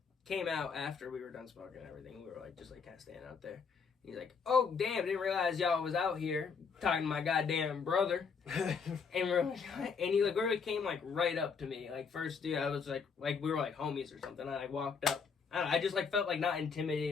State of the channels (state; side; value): quieter; right; 5.7 dB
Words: came out after we were done smoking and everything. We were, like, just, like, kind of standing out there. He's like, oh, damn, didn't realize y'all was out here talking to my goddamn brother. And we're like, and he, like, really came, like, right up to me. Like, first, dude, I was, like we were, like, homies or something. I, like, walked up. I don't know, I just, like, felt, like, not